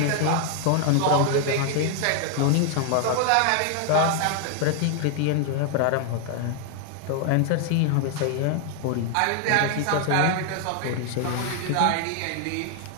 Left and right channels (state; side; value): different; both; correlation 0.00